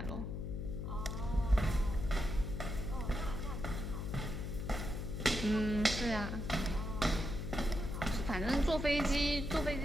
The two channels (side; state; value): left; noise; hum, 4 dB below the sound